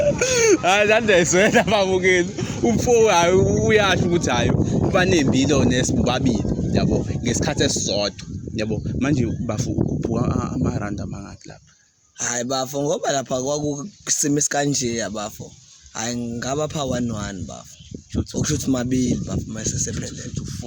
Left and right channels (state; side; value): identical; both; correlation 1.00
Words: hayi landeswena babukeli umfo hayi uyasho ukuthi hayi banembilo nesibabili yabo ngesikhathi esisodwa yabo manje bafo ukhuphuka amaranda mangaki lapha. Hayi bafo ngoba lapha kwakusimo esikanje yabafo hayi ngaba pha 11 bafo okushuthi mabili bafo mase sephelele